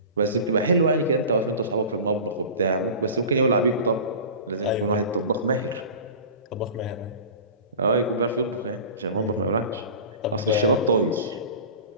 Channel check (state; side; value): inverted; both; correlation -0.36